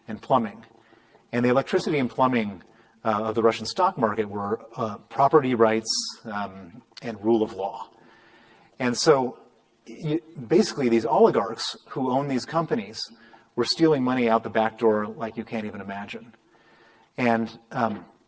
and plumbing. And the electricity and plumbing of the Russian stock market were property rights and rule of law. And so basically these oligarchs who own these companies were stealing money out the back door like you can't even imagine. And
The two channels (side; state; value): both; identical; correlation 1.00